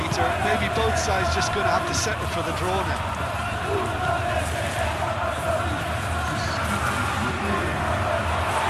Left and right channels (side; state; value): both; identical; correlation 1.00